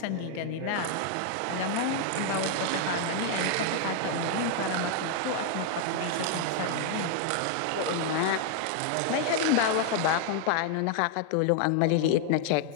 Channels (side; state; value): both; different; correlation 0.00